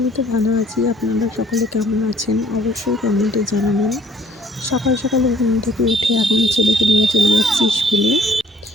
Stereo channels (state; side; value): normal; both; correlation 0.57